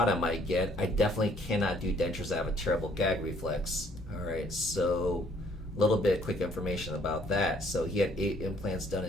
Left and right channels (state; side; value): normal; both; correlation 0.63